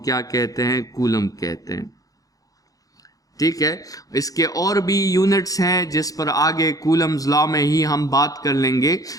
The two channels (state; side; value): late; right; 0.17 ms